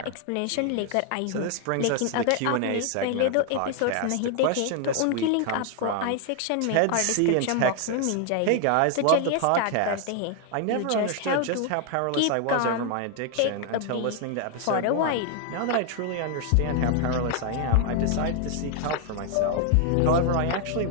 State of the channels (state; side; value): different; both; correlation 0.00